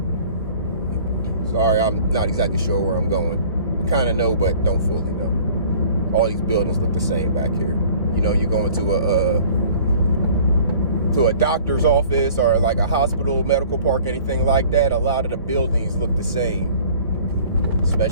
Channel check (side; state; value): both; inverted; correlation -0.50